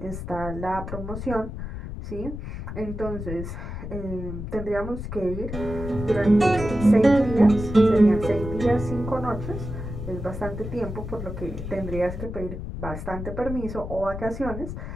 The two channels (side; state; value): left; noise; rumble, 7 dB below the sound